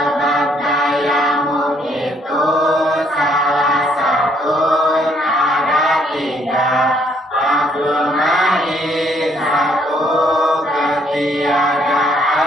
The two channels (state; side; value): normal; both; correlation 0.67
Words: tayamum itu salah satu ada 3. Fakul ma'i, 1